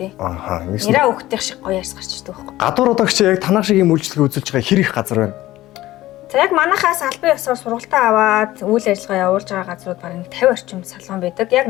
Ааха. Нэраа өгтөх шиг гоё арьс гарч ирдэг байхгүй юу? Гадуур удаагч яг танах шиг юм үйлчлэгээ үзүүлж байгаа хэр их газар байна? За яг манахаас албан ёсоор сургалтаа аваад үйл ажиллагаа явуулж байгаа газрууд бараг 50 орчим салон байдаг. Яг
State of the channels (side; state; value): right; quieter; 16.1 dB